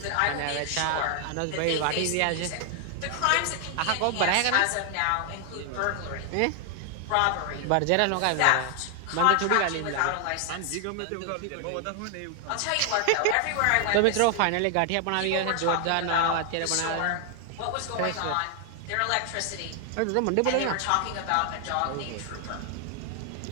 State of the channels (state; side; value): different; both; correlation 0.00